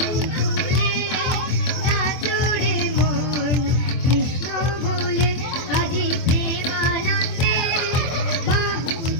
তুলে নাচরে মন কৃষ্ণ বলে। আজি প্রেমানন্দে বাহু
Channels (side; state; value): right; late; 24 ms